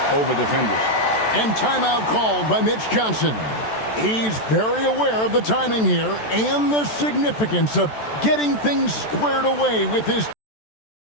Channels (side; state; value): right; late; 14 ms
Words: over defenders. And timeout called by Mitch Johnson. He's very aware of the timing here and the significance of getting things squared away with his